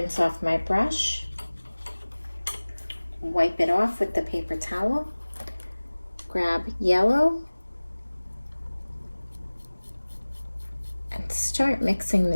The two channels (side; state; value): both; inverted; correlation -1.00